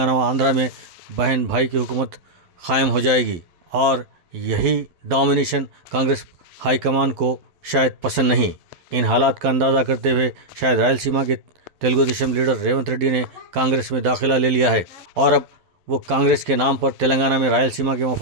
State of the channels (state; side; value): late; left; 12 ms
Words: و آندھرا میں بہن بھائی کی حکومت قائم ہو جائے گی، اور یہی ڈومینیشن کانگریس ہائی کمان کو شاید پسند نہیں۔ ان حالات کا اندازہ کرتے ہوئے شاید رائل سیما کے تیلگو دیشم لیڈر ریونت ریڈی نے کانگریس میں داخلہ لے لیا ہے اور اب وہ کانگریس کے نام پر تلنگانہ میں رائل سیما کے